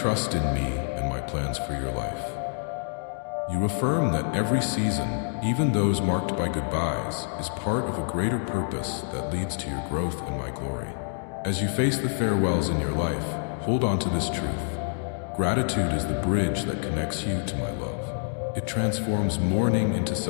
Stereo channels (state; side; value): silent; right; 60 dB below the other